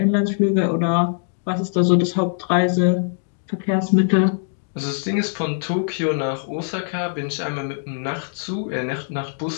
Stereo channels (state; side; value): silent; right; digital silence